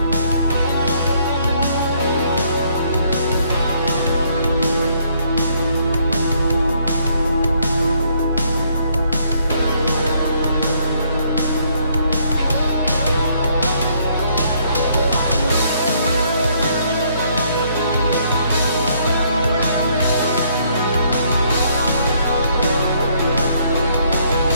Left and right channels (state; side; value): inverted; both; correlation -0.68